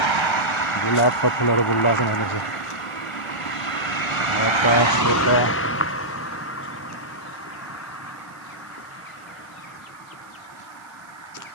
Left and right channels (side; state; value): right; noise; hiss, 29 dB below the sound